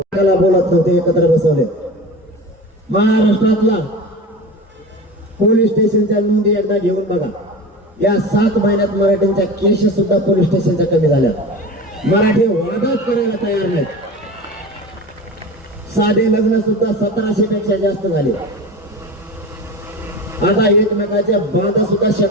बोलत नव्हते, एकत्र बसवले. महाराष्ट्रातला पोलीस स्टेशनच्या नोंदी एकदा घेऊन बघा. या 7 महिन्यात मराठ्यांच्या केस सुद्धा पोलीस स्टेशनच्या कमी झाल्या. मराठी वादाच करायला तयार नाहीत. साधे लग्न सुद्धा 1700 पेक्षा जास्त झाले. आता एकमेकाच्या बांधा सुद्धा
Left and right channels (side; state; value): both; normal; correlation 0.32